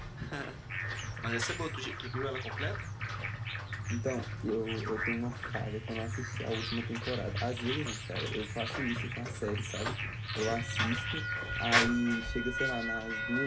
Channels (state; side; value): identical; both; correlation 1.00